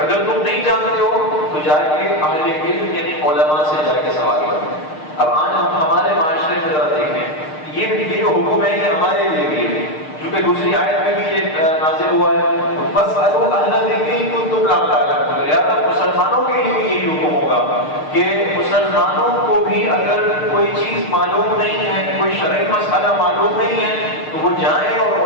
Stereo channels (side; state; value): right; late; 6.6 ms